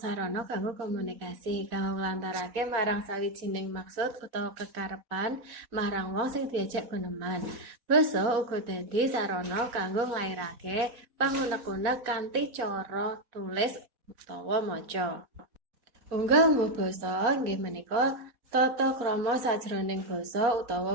kanggo komunikasi, kanggo nglantarake marang sawijining maksud utawa kekarepan marang wong sing diajak guneman. Basa uga dadi sarana kanggo nglairake pangunek-unek kanthi cara tulis utawa maca. Unggah-ungguh basa inggih menika tata krama sajroning basa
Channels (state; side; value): late; left; 4.3 ms